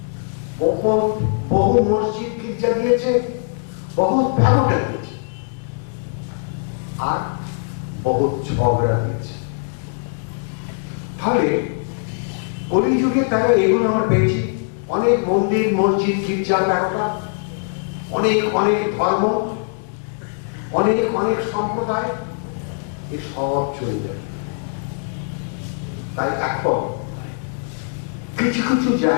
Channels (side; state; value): right; silent; digital silence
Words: বহু মসজিদ গির্জা দিয়েছে, বহু ব্যবসা দিয়েছে, আর বহু ঝগড়া দিয়েছে। তাহলে কলিযুগে তারা এগুলো আমরা পেয়েছি, অনেক মন্দির মসজিদ গির্জা ব্যবসা, অনেক অনেক ধর্ম, অনেক অনেক সম্প্রদায়, এ সব চলে যাবে। তাই এখন কিছু কিছু